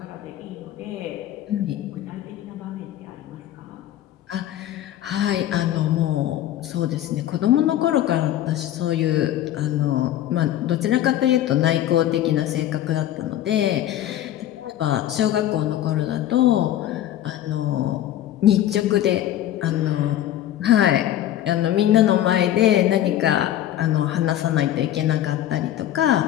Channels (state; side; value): quieter; right; 12.4 dB